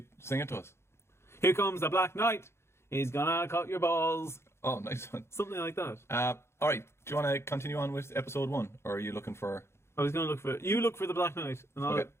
sing it to us? Here comes the Black Knight. He's gonna cut your balls. Oh, nice one. Something like that. All right, do you want to continue on with episode 1, or are you looking for... I was gonna look for it. You look for the Black Knight, and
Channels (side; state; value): right; late; 0.13 ms